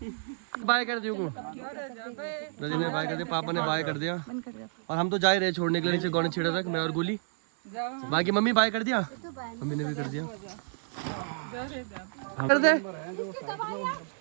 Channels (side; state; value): left; silent; 58 dB below the other